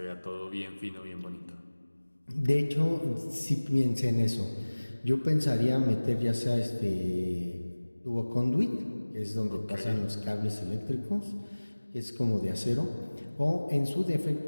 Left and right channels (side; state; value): both; inverted; correlation -1.00